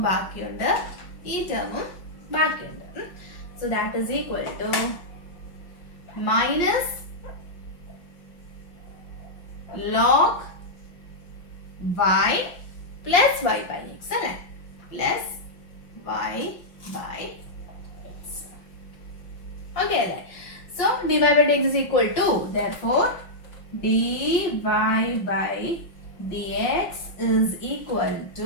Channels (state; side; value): late; right; 5.7 ms